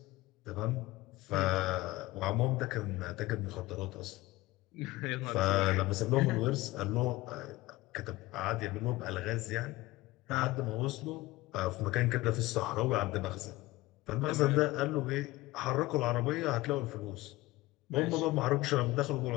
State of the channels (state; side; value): quieter; right; 19.1 dB